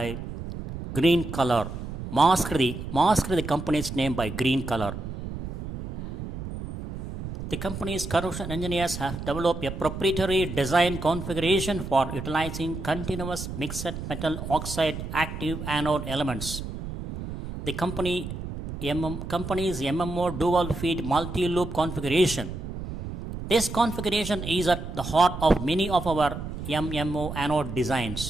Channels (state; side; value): noise; right; rumble, 8 dB below the sound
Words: green color. Mask the company's name by green color. The company's corrosion engineers have developed a proprietary design configuration for utilizing continuous mixed metal oxide active anode elements. The company's MMO dual feed multi-loop configuration. This configuration is at the heart of many of our MMO anode